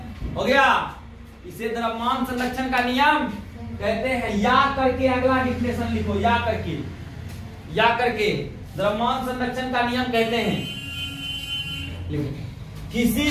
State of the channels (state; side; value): identical; both; correlation 1.00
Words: हो गया, इसे द्रव्यमान संरक्षण का नियम कहते हैं। या करके अगला डिफिनेशन लिखो, या करके द्रव्यमान संरक्षण का नियम कहते हैं। लिखो, किसी